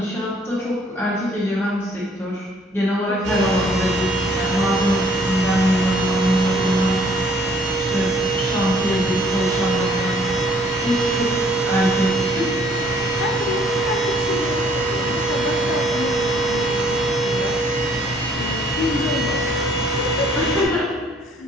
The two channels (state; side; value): normal; both; correlation 0.61